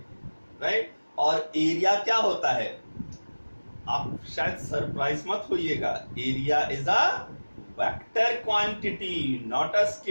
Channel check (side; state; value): both; inverted; correlation -1.00